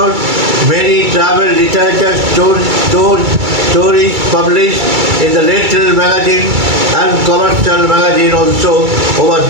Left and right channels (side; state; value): left; late; 2.3 ms